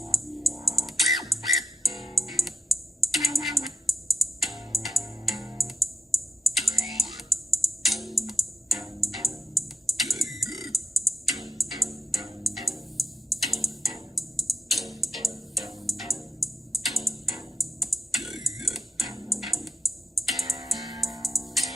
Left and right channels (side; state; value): both; normal; correlation 0.89